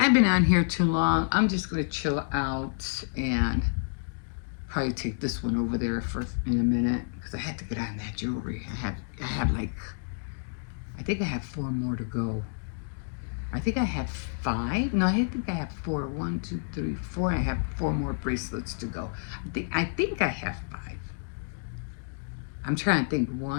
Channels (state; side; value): silent; right; digital silence